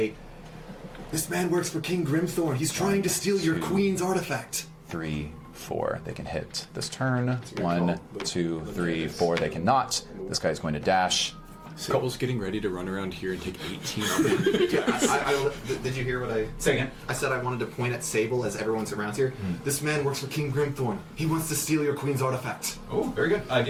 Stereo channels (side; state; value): both; identical; correlation 1.00